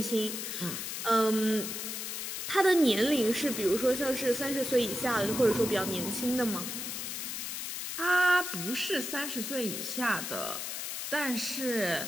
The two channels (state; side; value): noise; left; hiss, 5 dB below the sound